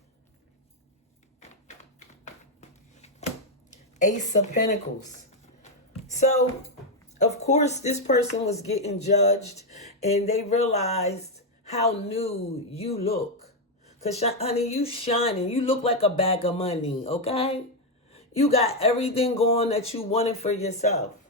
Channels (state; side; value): normal; both; correlation 0.04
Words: Ace of Pentacles. So, of course, this person was getting judged and they realized how new you look. Because, honey, you shining. You look like a bag of money, okay? You got everything going that you wanted for yourself.